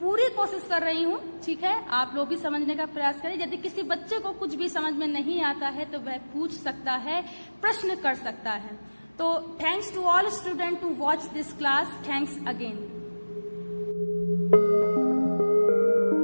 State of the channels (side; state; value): both; inverted; correlation -1.00